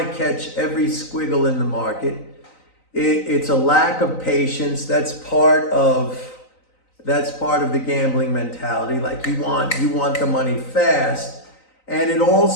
catch every squiggle in the market. It's a lack of patience. That's part of the gambling mentality. Like you want the money fast. And it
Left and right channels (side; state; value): right; late; 3.9 ms